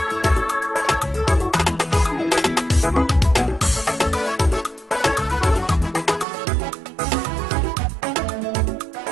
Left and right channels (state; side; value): drops out; left; at 6.2 s